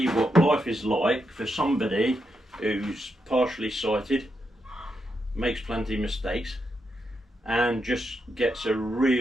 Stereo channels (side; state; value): both; normal; correlation 0.83